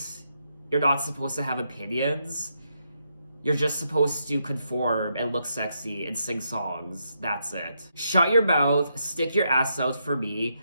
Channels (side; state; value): both; inverted; correlation -0.80